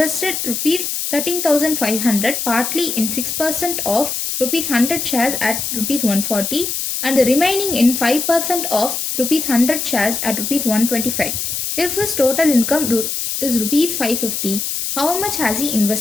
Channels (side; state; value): left; noise; hiss, 3 dB below the sound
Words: rupees 13,500 partly in 6% of rupees 100 shares at rupees 140 and the remaining in 5% of rupees 100 shares at rupees 125. If his total income is rupees 550, how much has he